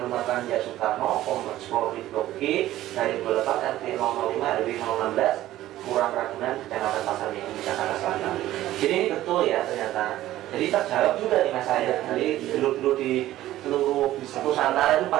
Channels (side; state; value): left; quieter; 14.5 dB